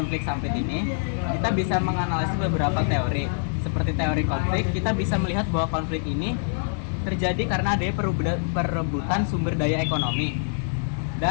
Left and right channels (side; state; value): right; silent; 61 dB below the other